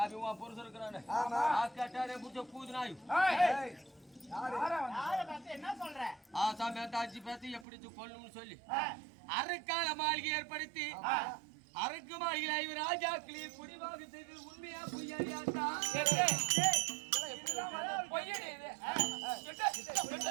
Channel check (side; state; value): left; drops out; at 7.7 s